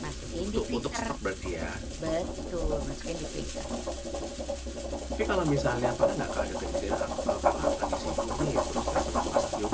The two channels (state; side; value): identical; both; correlation 1.00